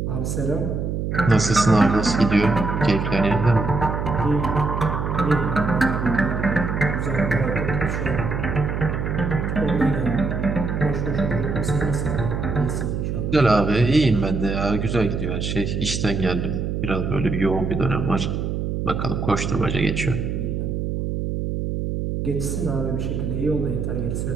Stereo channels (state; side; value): noise; right; hum, 2 dB below the sound